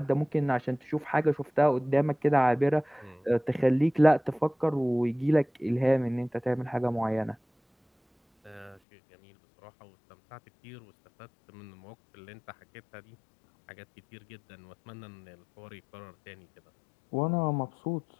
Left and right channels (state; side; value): drops out; right; at 8.8 s